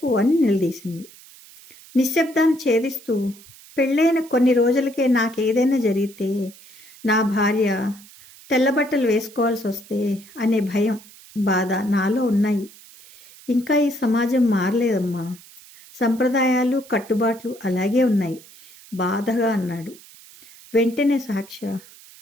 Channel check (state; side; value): noise; right; hiss, 22 dB below the sound